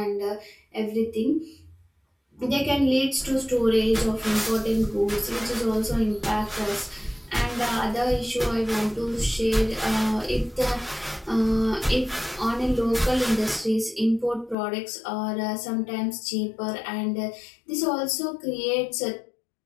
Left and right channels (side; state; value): right; drops out; at 14.6 s